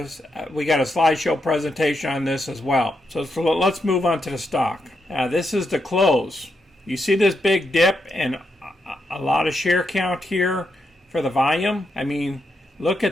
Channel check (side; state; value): both; normal; correlation 0.83